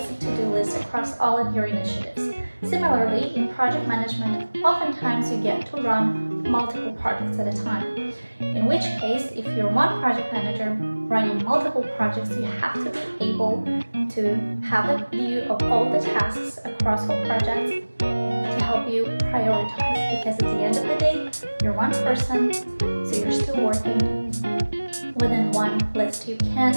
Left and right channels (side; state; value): both; inverted; correlation -1.00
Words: to-do list across all of your initiatives. Similarly, in project management, oftentimes you get to run multiple projects at a time. In which case, if you're one project manager running multiple projects, you have to be able to have a view of all the tasks across all projects to help you prioritize. Because at the end of the day, you're one person, so you're still working within one list. You can't